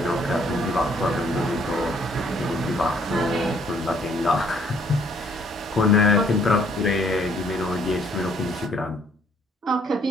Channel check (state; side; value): normal; both; correlation 0.64